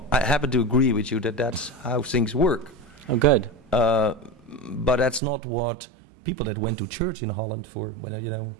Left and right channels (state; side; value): drops out; left; at 5.2 s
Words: I happen to agree with you that that's how things work. Oh, good. But that's not what people that went to church in Holland